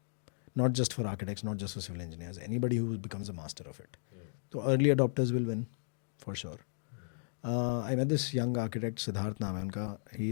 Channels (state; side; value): silent; right; digital silence